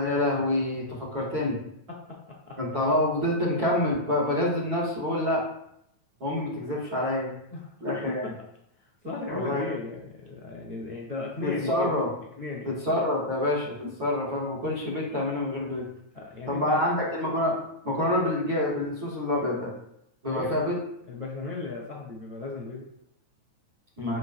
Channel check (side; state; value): left; late; 9.2 ms